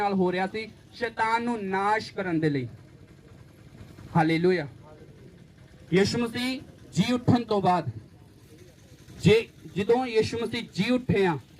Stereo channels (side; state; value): both; identical; correlation 1.00